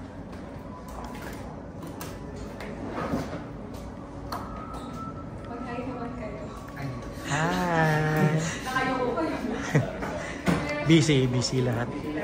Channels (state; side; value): identical; both; correlation 1.00